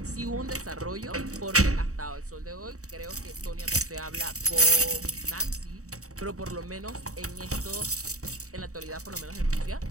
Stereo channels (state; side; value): late; left; 0.65 ms